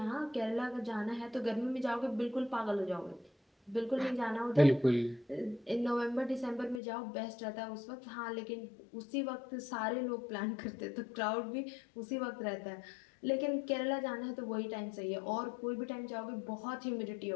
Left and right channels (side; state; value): right; drops out; at 6.8 s